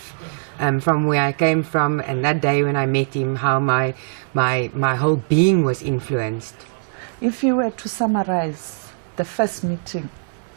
from where I came from, and that day when I met him, how my whole being was influenced. If you were to summarize the first meeting,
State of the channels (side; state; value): left; silent; digital silence